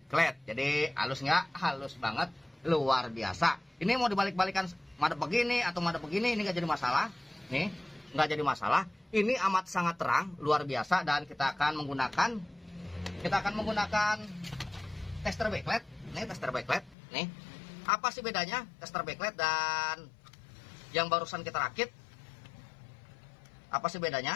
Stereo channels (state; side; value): drops out; right; at 16.9 s